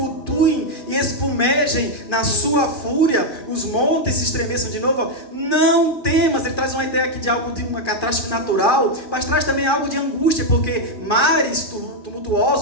e espumejem na sua fúria, os montes se estremeçam de novo, não temas. Ele traz uma ideia aqui de algo de uma catástrofe natural, mas traz também algo de angústia, porque mares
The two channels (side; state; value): right; late; 2.4 ms